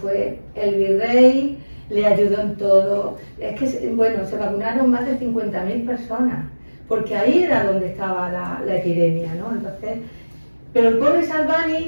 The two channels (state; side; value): inverted; both; correlation -1.00